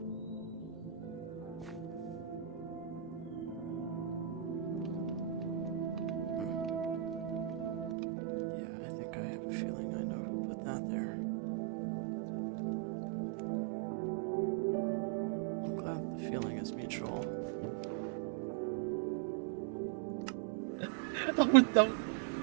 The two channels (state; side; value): drops out; left; at 8.0 s